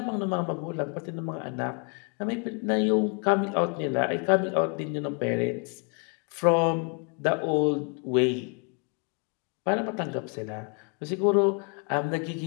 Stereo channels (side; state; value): right; quieter; 36.1 dB